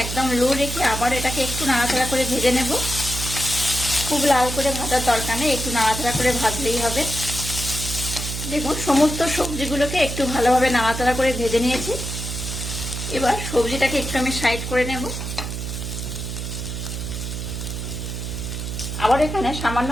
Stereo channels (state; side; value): noise; right; hum, 5 dB below the sound